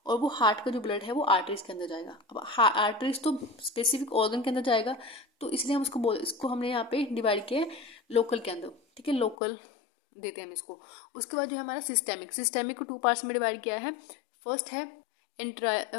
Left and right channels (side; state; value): right; drops out; at 9.3 s